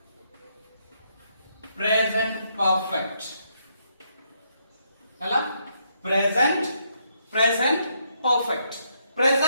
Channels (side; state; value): both; inverted; correlation -0.75